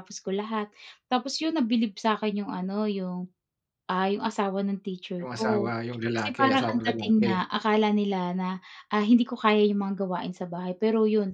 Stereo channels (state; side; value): identical; both; correlation 1.00